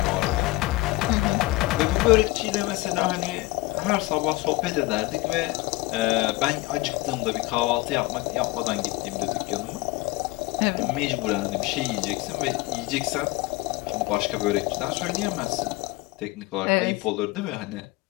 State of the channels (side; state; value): right; quieter; 20.6 dB